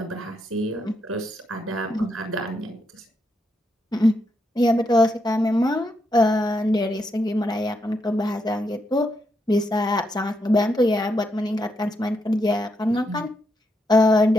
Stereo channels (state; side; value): normal; both; correlation 0.81